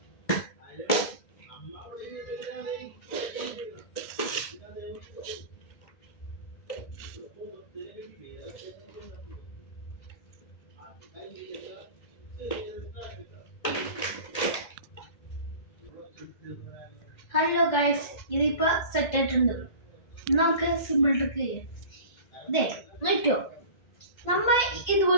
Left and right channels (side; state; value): right; late; 1.8 ms